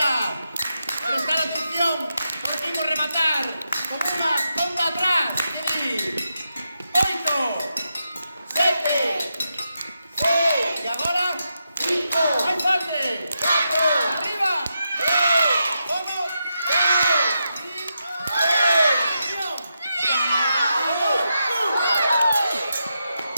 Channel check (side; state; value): both; inverted; correlation -0.86